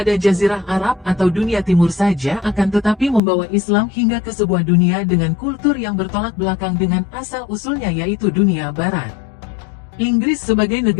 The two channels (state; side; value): drops out; right; at 3.2 s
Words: Jazirah Arab atau dunia timur saja, akan tetapi membawa Islam hingga ke sebuah dunia dengan kultur yang bertolak belakang dengan asal-usulnya, yaitu dunia barat. Inggris sebagai